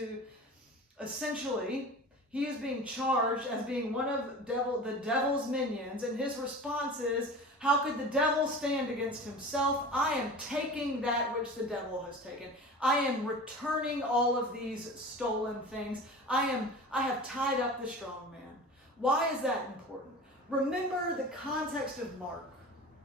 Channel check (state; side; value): normal; both; correlation 0.36